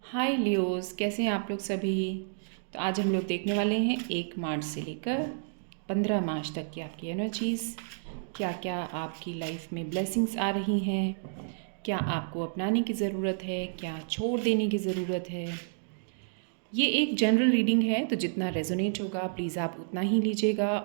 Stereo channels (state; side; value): silent; left; digital silence